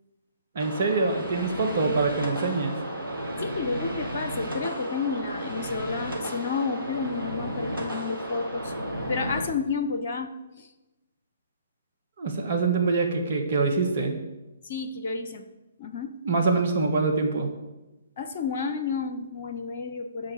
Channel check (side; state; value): both; inverted; correlation -0.55